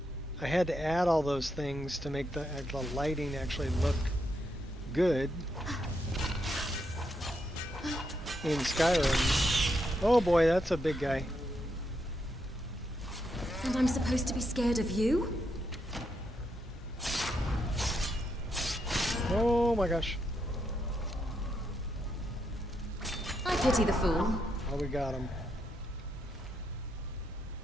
I had to add all those things to make the lighting actually look good in Skyrim. Oh boy, that's a big guy. And I'm supposed to be scared of you? Oh my gosh. I pity the fool. Oh, we got him.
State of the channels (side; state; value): both; normal; correlation 0.80